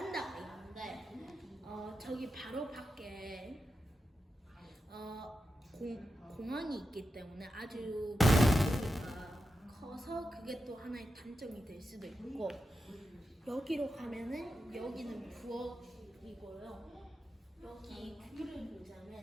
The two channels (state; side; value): normal; both; correlation 0.89